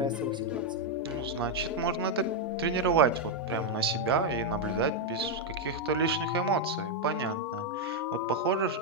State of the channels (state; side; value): normal; both; correlation 0.01